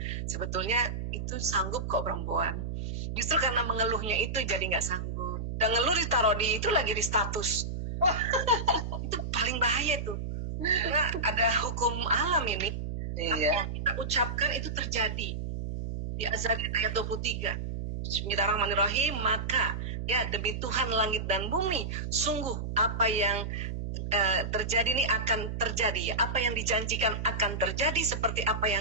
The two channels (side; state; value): right; noise; hum, 4 dB below the sound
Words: sebetulnya itu sanggup kok perempuan. Justru karena mengeluhnya itu jadi nggak sanggup. Dan ngeluh ditaruh di itu lagi di status. Itu paling bahaya tuh. Karena ada hukum alam ini. Iya. Apa yang kita ucapkan itu terjadi. Di Az-Zariyat ayat 23. Bismillahirrahmanirrahim. Maka ya demi Tuhan langit dan bumi, sungguh apa yang terjadi ini akan terjadi. Apa yang dijanjikan akan terjadi seperti apa